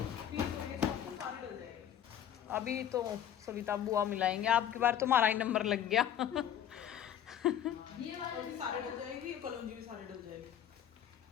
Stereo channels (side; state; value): right; quieter; 10.2 dB